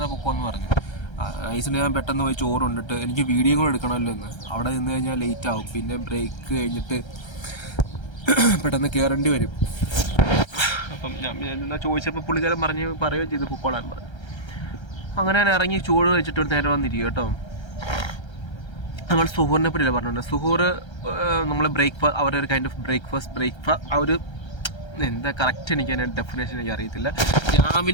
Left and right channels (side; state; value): right; late; 1.3 ms